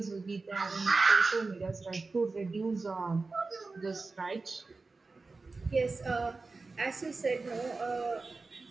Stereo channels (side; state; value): left; quieter; 3.8 dB